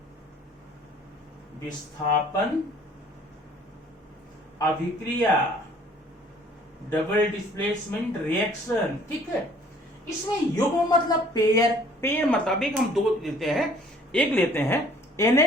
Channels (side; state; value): both; normal; correlation 0.56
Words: विस्थापन अभिक्रिया, डबल डिस्प्लेसमेंट रिएक्शन। ठीक है। इसमें युग्म मतलब पेयर, पेयर मतलब एक हम दो लेते हैं, एक लेते हैं